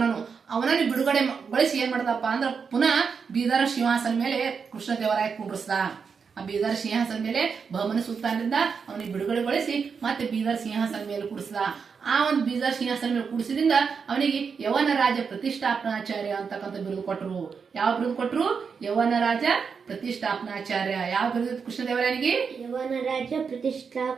ಅವನನ್ನು ಬಿಡುಗಡೆಗೊಳಿಸಿ ಏನ್ ಮಾಡ್ದಪ್ಪ ಅಂದ್ರ ಪುನಃ ಬೀದರ್ ಸಿಂಹಾಸನ ಮೇಲೆ ಕೃಷ್ಣದೇವರಾಯ ಕುಂಡ್ರಿಸ್ದ. ಆ ಬೀದರ್ ಸಿಂಹಾಸನ ಮೇಲೆ ಬಹಮನಿ ಸುಲ್ತಾನರಿಂದ ಅವನಿಗೆ ಬಿಡುಗಡೆಗೊಳಿಸಿ ಮತ್ತೆ ಬೀದರ್ ಸಿಂಹಾಸನ ಮೇಲೆ ಕೂಡಿಸ್ದ. ಆ ಒಂದು ಬೀದರ್ ಸಿಂಹಾಸನ ಮೇಲೆ ಕೂಡಿಸಿದ್ರಿಂದ ಅವನಿಗೆ ಯವನ ರಾಜ ಪ್ರತಿಷ್ಠಾಪನಾಚಾರ್ಯ ಅಂತಕ್ಕಂಥ ಬಿರುದು ಕೊಟ್ಟರು. ಯಾವ ಬಿರುದು ಕೊಟ್ಟರು? ಯವನ ರಾಜ ಪ್ರತಿಷ್ಠಾಪನಾಚಾರ್ಯ. ಯಾವ ಬಿರುದು ಕೃಷ್ಣದೇವರಾಯನಿಗೆ? ಯವನ ರಾಜ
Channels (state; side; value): quieter; left; 5.9 dB